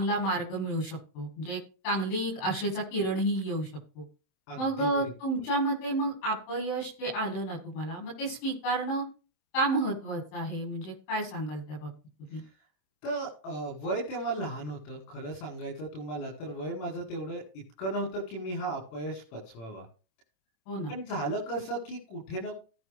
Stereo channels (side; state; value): right; late; 27 ms